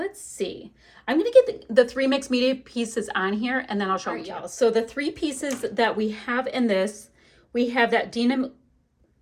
see. I'm going to get the 3 mixed media pieces on here, and then I'll show y'all. So the 3 pieces that we have in this, we have that Dina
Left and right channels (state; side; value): identical; both; correlation 1.00